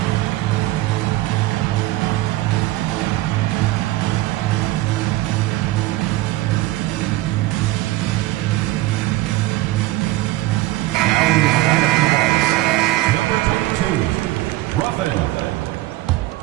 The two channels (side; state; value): left; quieter; 17.5 dB